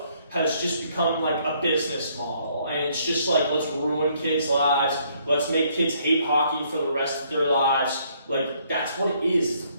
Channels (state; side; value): inverted; both; correlation -0.67